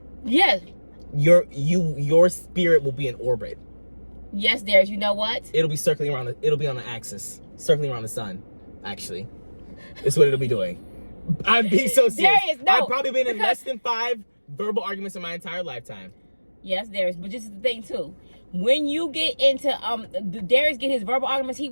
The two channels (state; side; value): inverted; both; correlation -1.00